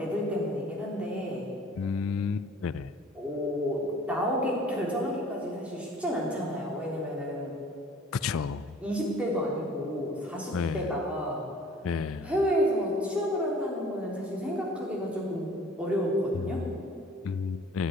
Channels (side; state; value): both; normal; correlation 0.50